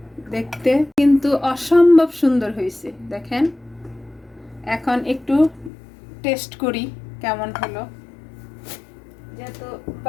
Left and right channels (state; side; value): drops out; right; at 5.7 s